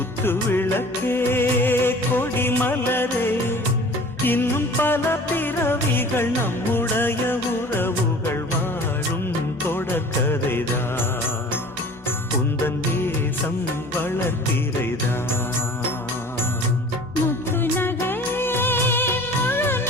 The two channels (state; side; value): normal; both; correlation 0.45